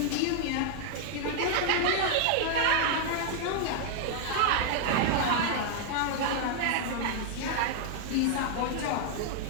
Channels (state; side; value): different; both; correlation 0.00